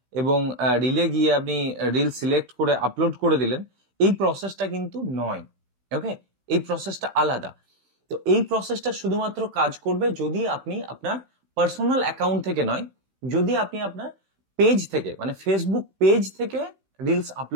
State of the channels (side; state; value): left; late; 16 ms